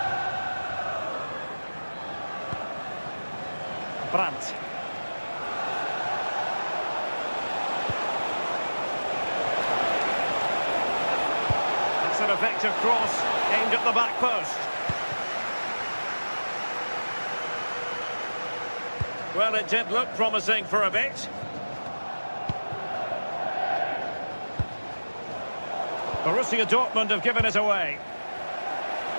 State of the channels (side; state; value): both; inverted; correlation -1.00